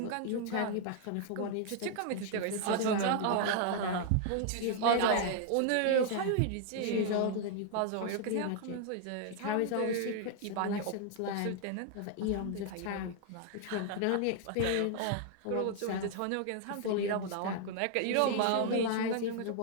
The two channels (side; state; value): both; different; correlation 0.00